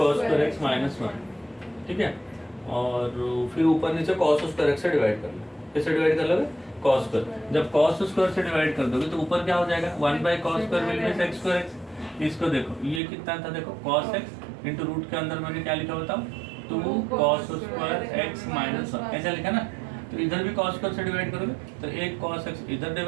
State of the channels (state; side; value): drops out; left; at 13.0 s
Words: square x माइनस 1। ठीक है, और फिर ऊपर नीचे cos square x से डिवाइड कर लो। किससे डिवाइड कर लोगे? cos square। जब cos square से डिवाइड कर दोगे तो ऊपर क्या हो जाएगा? 1 by cos square will be x square x। इसको देखो ये कितना था? देखो cos x इंटू रूट के अंदर मैंने क्या लिखा बताओ? 2 cos square x माइनस 1 ऐसा लिखा ना। तो इधर भी cos square से डिवाइड करोगे तो एक cos x इधर